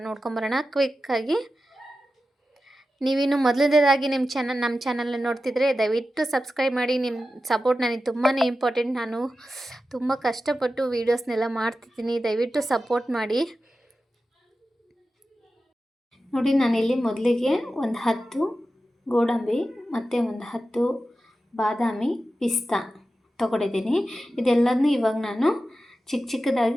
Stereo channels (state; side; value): normal; both; correlation 0.93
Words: ನೋಡ್ಕೊಂಬರೋಣ ಕ್ವಿಕ್ಕಾಗಿ. ನೀವಿನ್ನು ಮೊದಲನೇದಾಗಿ ನಮ್ಮ ಚಾನಲ್ನ ನೋಡ್ತಿದ್ರೆ ದಯವಿಟ್ಟು ಸಬ್ಸ್ಕ್ರೈಬ್ ಮಾಡಿ. ನಿಮ್ಮ ಸಪೋರ್ಟ್ ನನಗೆ ತುಂಬಾ ಇಂಪಾರ್ಟೆಂಟ್. ನಾನು ತುಂಬ ಕಷ್ಟಪಟ್ಟು ವೀಡಿಯೋಸ್ನೆಲ್ಲ ಮಾಡ್ತಿದ್ದೀನಿ. ದಯವಿಟ್ಟು ಸಪೋರ್ಟ್ ಮಾಡಿ. ನೋಡಿ, ನಾನಿಲ್ಲಿ ಮೊದಲಿಗೆ ಒಂದು 10 ಗೋಡಂಬಿ ಮತ್ತು ಒಂದು 10 ಬಾದಾಮಿ ಪಿಸ್ತಾ ತೊಗೊಂಡಿದ್ದೀನಿ. ಇದೆಲ್ಲದನ್ನೂ ಇವಾಗ ನಾನು